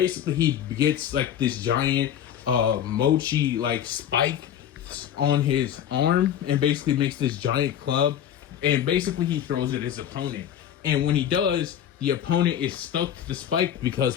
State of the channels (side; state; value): right; quieter; 10.0 dB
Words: he gets like this giant Mochi like spike on his arm and basically makes this giant club, and basically he throws it at his opponent. And when he does, the opponent is stuck to the spike